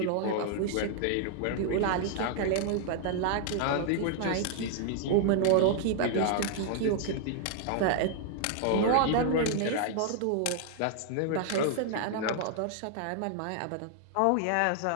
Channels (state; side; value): different; both; correlation -0.01